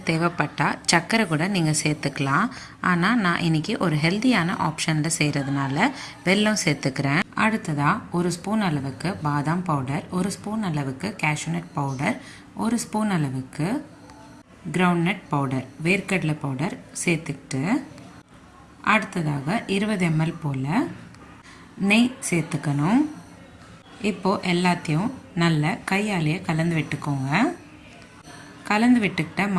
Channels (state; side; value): identical; both; correlation 1.00